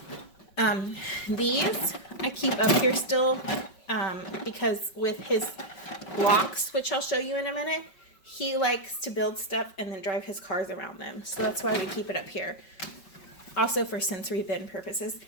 These I keep up here still because with his blocks, which I'll show you in a minute, he likes to build stuff and then drive his cars around them. So that's why we keep it up here. Also for sensory bin purposes.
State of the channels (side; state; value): right; late; 5.2 ms